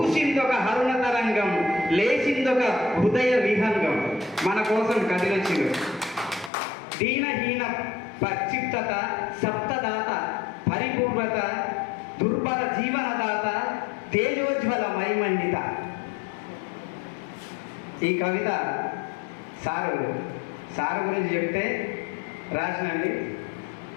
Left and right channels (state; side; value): drops out; right; at 6.5 s